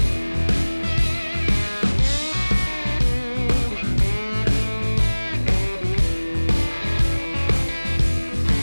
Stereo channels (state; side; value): inverted; both; correlation -1.00